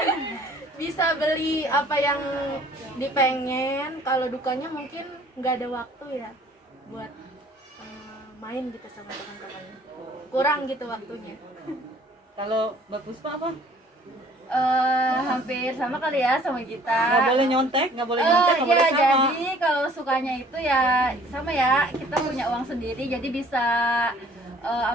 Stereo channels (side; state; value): both; normal; correlation 0.55